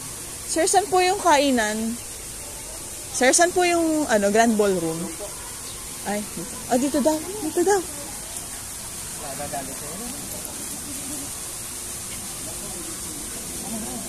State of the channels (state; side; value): identical; both; correlation 1.00